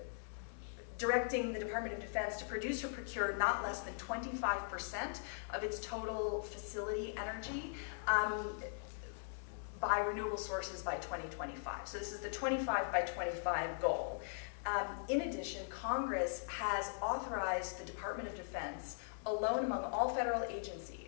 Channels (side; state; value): right; silent; digital silence